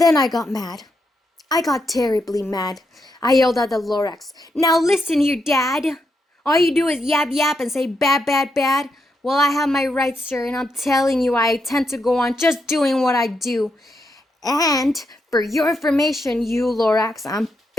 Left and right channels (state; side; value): normal; both; correlation 0.82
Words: I got mad. I got terribly mad. I yelled at the lorax, now listen here, Dad. All you do is yap yap and say bad, bad, bad. Well, I have my rights, sir, and I'm telling you I intend to go on just doing what I do. And for your information, you lorax, I'm